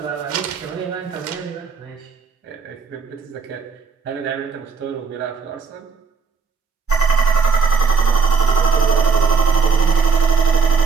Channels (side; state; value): left; quieter; 5.2 dB